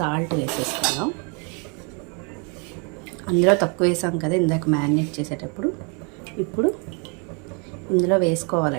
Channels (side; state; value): left; quieter; 35.6 dB